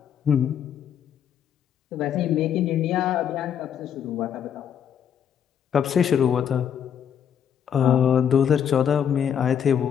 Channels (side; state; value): right; quieter; 8.6 dB